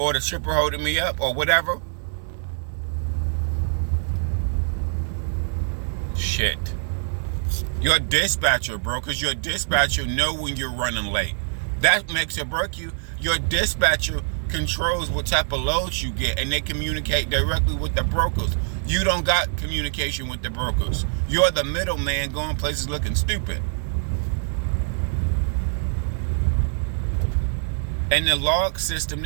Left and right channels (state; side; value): silent; left; 59 dB below the other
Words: the shipper holding me up? Or whatever? Shit. Your dispatcher, bro, because your dispatcher know when you're running late. That makes it break you. Your dispatcher controls what type of loads you get, and they communicate directly with the brokers. You don't got communication with the brokers. You're the middleman going places looking stupid. And the log system,